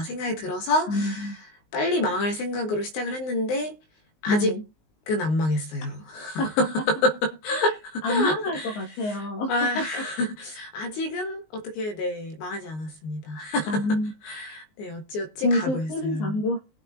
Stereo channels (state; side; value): late; right; 19 ms